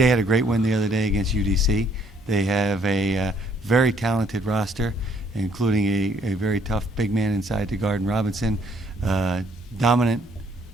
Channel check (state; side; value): normal; both; correlation 0.65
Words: had a great win the other day against UDC. They have a very talented roster, including a very tough big man inside to guard Robinson, dominant